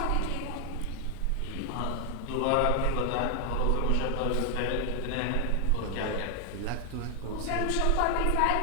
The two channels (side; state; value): both; different; correlation 0.00